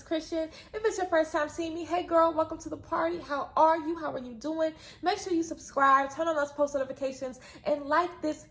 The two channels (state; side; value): identical; both; correlation 1.00